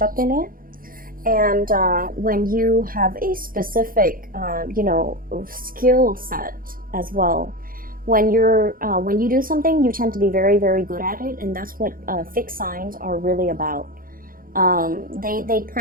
up in it. And when you have a specific, skill set as well, when you do something, you tend to be very, very good at it, and that's what fixed signs are really about. They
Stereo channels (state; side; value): late; left; 0.41 ms